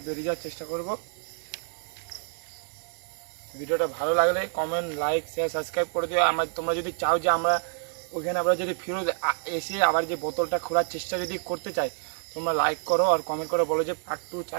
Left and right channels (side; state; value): left; silent; 59 dB below the other